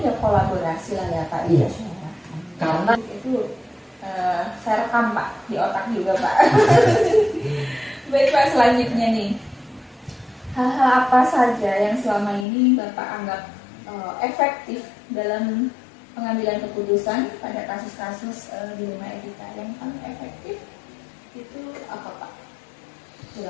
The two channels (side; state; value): right; drops out; at 12.5 s